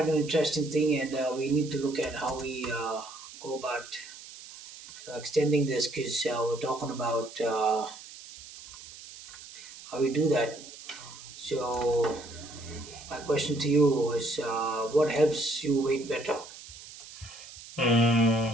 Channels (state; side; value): noise; right; hiss, 16 dB below the sound